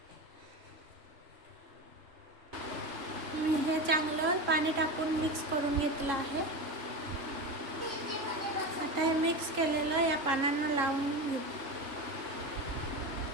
मी हे चांगलं पाणी टाकून मिक्स करून घेतलं आहे। आता हे मिक्स केलेलं या पानांना लावून घेऊ।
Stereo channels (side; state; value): left; late; 3.7 ms